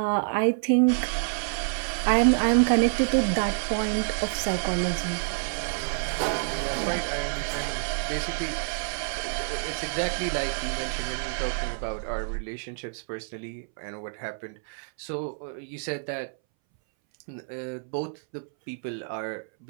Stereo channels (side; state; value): left; silent; 60 dB below the other